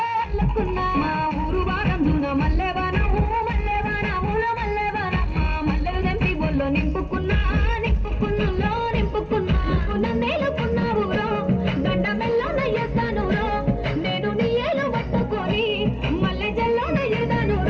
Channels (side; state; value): both; identical; correlation 1.00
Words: అల్లుకున్నా మా ఊరు వారందున మల్లెవానము మల్లెవానముల మల్లెవాన మా మల్లెలు దంపి బొల్లో నింపుకున్నా నింపుకున్నులో నింపుకున్నా నన్నేలుకున్నా ఊరో గండ మెల్లో నయ్యేస్తాను రో నేను నీ ఏలు పట్టుకొని మల్లె జల్లో నయ్యేదాను